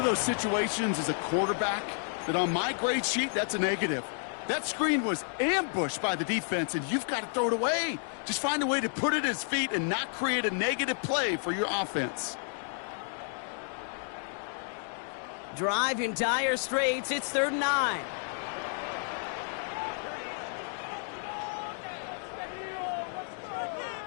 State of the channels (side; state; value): right; silent; 57 dB below the other